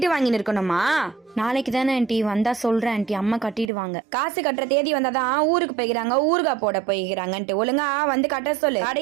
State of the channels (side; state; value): left; drops out; at 3.7 s